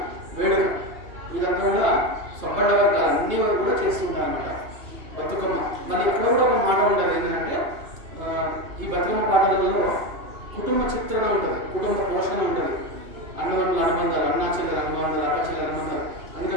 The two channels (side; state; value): left; late; 2.8 ms